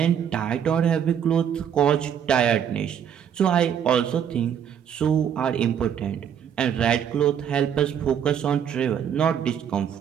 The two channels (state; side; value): quieter; left; 8.6 dB